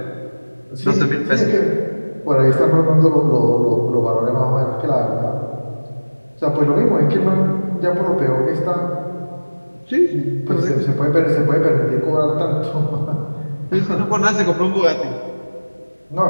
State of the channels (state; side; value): inverted; both; correlation -1.00